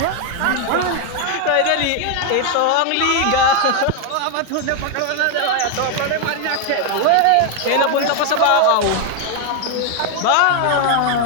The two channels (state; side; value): different; both; correlation 0.01